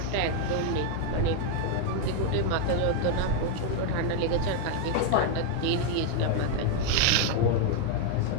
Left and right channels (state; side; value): different; both; correlation 0.01